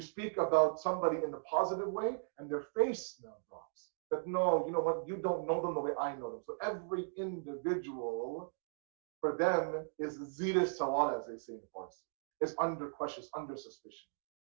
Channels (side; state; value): left; silent; digital silence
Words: about somebody in the positive way, and their face now drops. That no, you know what, you don't know them the way I know them. So every individual for them is zira sawal, as they say in Farsi. It's under question, under suspicion.